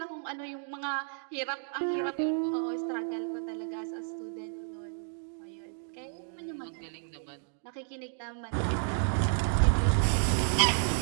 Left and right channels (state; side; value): silent; left; digital silence